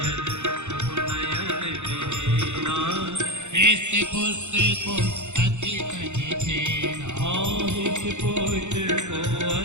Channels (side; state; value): left; late; 0.83 ms